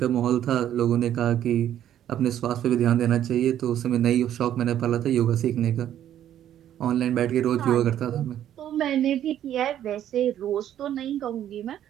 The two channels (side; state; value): left; quieter; 11.1 dB